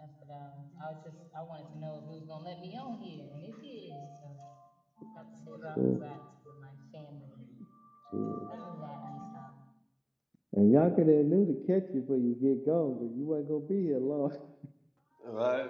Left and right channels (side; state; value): both; identical; correlation 1.00